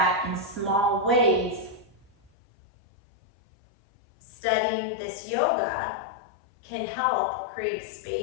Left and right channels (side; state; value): right; drops out; at 2.3 s